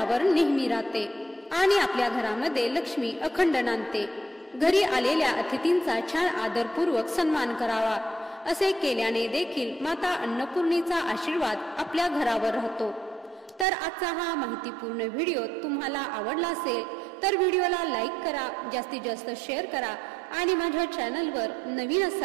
नेहमी राहते आणि आपल्या घरामध्ये लक्ष्मी अखंड नांदते। घरी आलेल्या अतिथींचा छान आदरपूर्वक सन्मान करावा। असे केल्याने देखील माता अन्नपूर्णेचा आशीर्वाद आपल्या घरावर राहतो। तर आजचा हा माहितीपूर्ण व्हिडिओ तुम्हाला आवडला असेल तर व्हिडिओला लाईक करा, जास्तीत जास्त शेअर करा आणि माझ्या चॅनलवर नवीन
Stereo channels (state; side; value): drops out; left; at 13.7 s